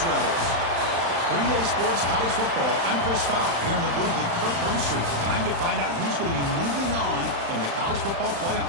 Rebels. For EA Sports College Football, I'm Chris Fowler here in the booth with Kirk Broomstreet. Time to find out who's going to be moving on in the college football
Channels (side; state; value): left; late; 35 ms